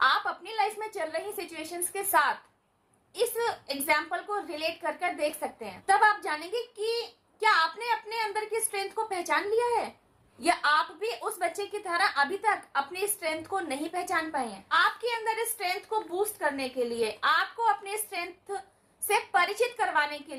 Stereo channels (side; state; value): both; identical; correlation 1.00